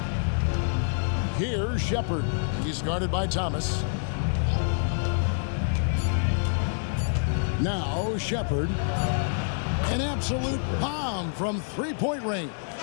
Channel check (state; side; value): silent; right; digital silence